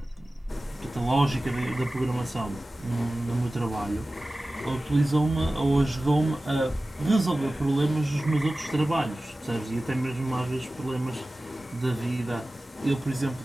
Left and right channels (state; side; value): normal; both; correlation 0.96